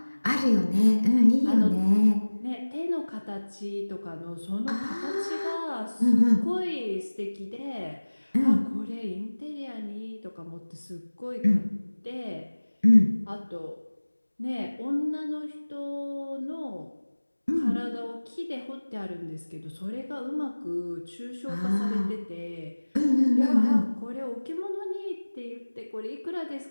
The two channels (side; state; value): both; inverted; correlation -1.00